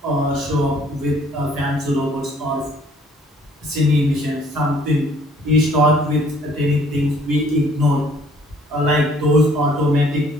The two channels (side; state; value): both; normal; correlation 0.59